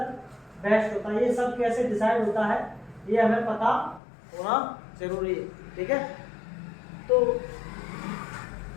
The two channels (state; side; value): drops out; right; at 4.0 s